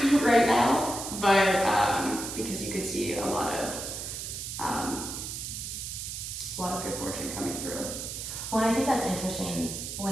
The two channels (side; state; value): right; noise; hiss, 6 dB below the sound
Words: right now. But because you could see a lot of good fortune coming through. Well, I think that's interesting